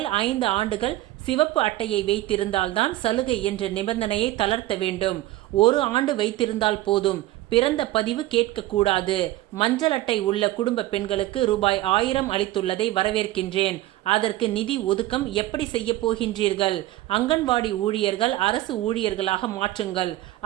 5 ஆண்டுகள் சிவப்பு அட்டையை வைத்திருந்தால்தான் சலுகை என்ற நிபந்தனையை தளர்த்த வேண்டும். 1 ஆண்டு வைத்திருந்தால் போதும். பிறந்த பதிவு கேட்கக்கூடாது. மஞ்சள் அட்டை உள்ள குடும்ப பெண்களுக்கு ரூபாய் 1000 அளித்துள்ளதை வரவேற்கின்றேன். அதற்கு நிதி ஒதுக்கம் எப்படி செய்ய போகின்றீர்கள்? அங்கன்வாடி ஊழியர்கள் அரசு ஊழியர்களாக மாற்றுங்கள்.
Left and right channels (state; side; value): quieter; left; 15.9 dB